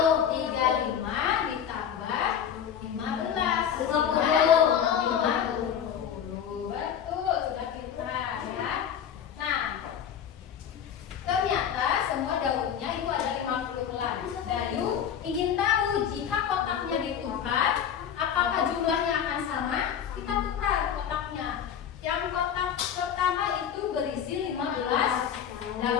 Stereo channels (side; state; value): right; quieter; 8.7 dB